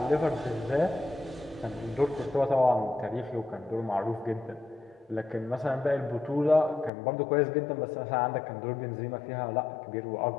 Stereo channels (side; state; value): right; drops out; at 6.9 s